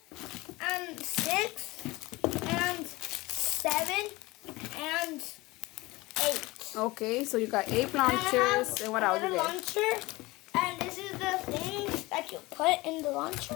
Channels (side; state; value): right; quieter; 21.5 dB